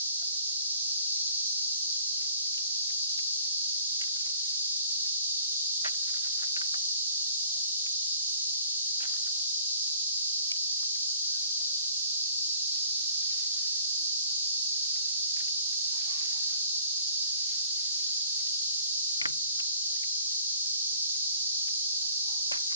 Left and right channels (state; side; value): inverted; both; correlation -0.53